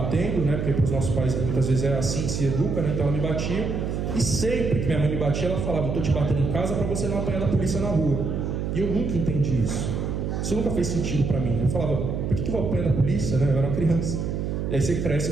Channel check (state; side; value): noise; right; hum, 2 dB below the sound